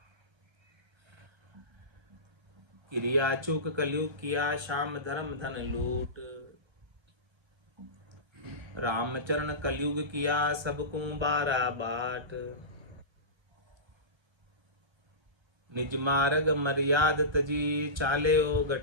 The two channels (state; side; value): late; left; 1.3 ms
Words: क्रिया चूक कलयुग किया श्याम धर्म धन लूट। रामचरण कलयुग किया सबको बारा बाट। निज मार्ग मर्याद तजी चाले ओ